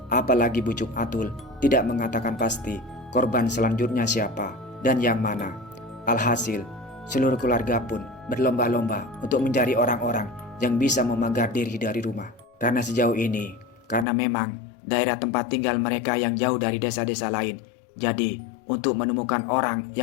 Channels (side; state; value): right; drops out; at 14.1 s